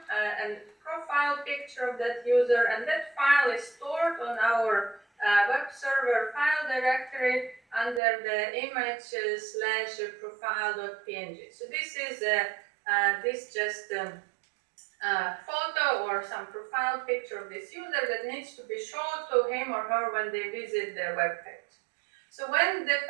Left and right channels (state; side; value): drops out; left; at 8.0 s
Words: and profile picture of that user, and that file is stored on our web server file directory under the image/profile.png. So this is photo or some profile picture of this user that needs to be shown to him or her when they visit the web page. So when the